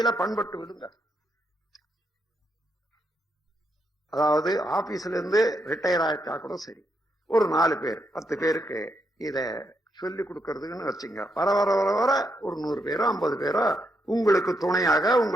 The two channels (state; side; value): normal; both; correlation 0.79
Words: பண்பட்டு விடுங்க. அதாவது ஆபீஸ்ல இருந்து ரிட்டையர் ஆயிட்டா கூட சரி, ஒரு 4 பேர் 10 பேருக்கு இத சொல்லி கொடுக்கறதுன்னு வச்சுங்க. வர வர வர வர ஒரு 100 பேரோ 50 பேரோ உங்களுக்கு துணையாக